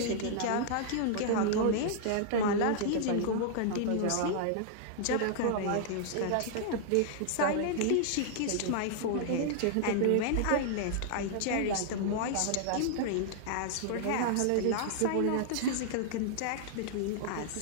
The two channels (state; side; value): different; both; correlation -0.01